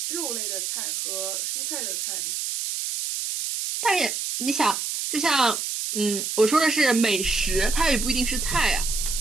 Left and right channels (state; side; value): noise; right; hiss, 3 dB below the sound